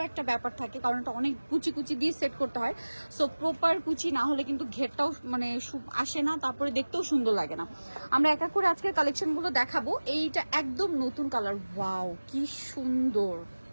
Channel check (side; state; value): both; inverted; correlation -1.00